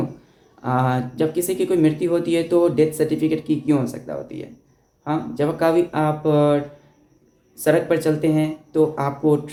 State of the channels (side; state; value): both; identical; correlation 1.00